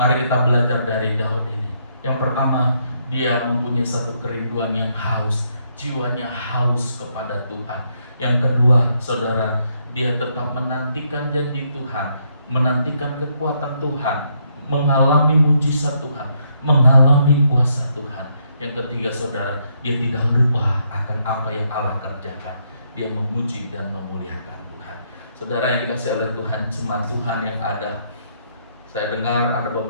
kita belajar dari Daud ini. Yang pertama, Dia mempunyai satu kerinduan yang haus, jiwanya haus kepada Tuhan. Yang kedua, saudara, dia tetap menantikan janji Tuhan, menantikan kekuatan Tuhan, mengalami mujizat Tuhan, mengalami kuasa Tuhan. Yang ketiga, saudara, dia tidak lupa akan apa yang Allah kerjakan. Dia memuji dan memuliakan Tuhan. Saudara yang dikasihi oleh Tuhan, jemaat Tuhan yang ada, saya dengar ada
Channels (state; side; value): inverted; both; correlation -0.74